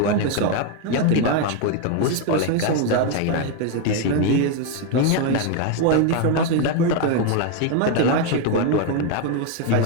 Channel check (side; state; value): both; different; correlation 0.01